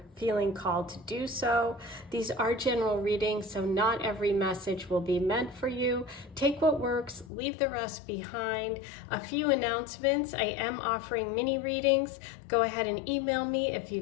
feeling called to do so. These are general readings, so not every message will be meant for you. Take what works, leave the rest behind. A few announcements. I am offering mini readings. Go ahead and email me if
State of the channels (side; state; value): right; drops out; at 7.3 s